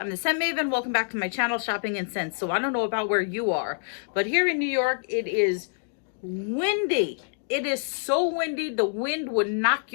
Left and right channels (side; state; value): right; silent; digital silence